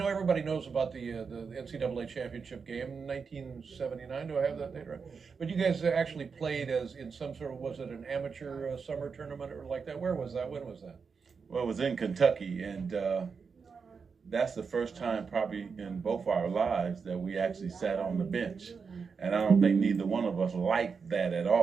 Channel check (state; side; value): quieter; left; 5.5 dB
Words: everybody knows about the NCAA championship game in 1979. Do I have that date right? But you guys actually played as in some sort of, was it an amateur summer tournament or like that? Where was that? When was that? Well, it was in Kentucky, and that's the first time probably in both our lives that we actually sat on the bench. And I don't think neither one of us liked that at